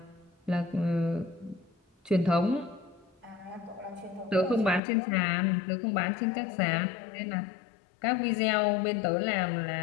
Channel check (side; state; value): right; drops out; at 4.8 s